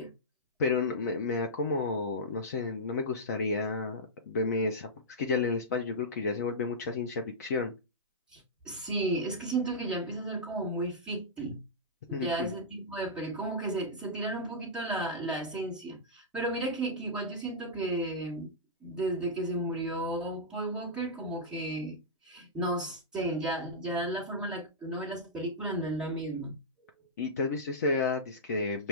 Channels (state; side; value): normal; both; correlation -0.13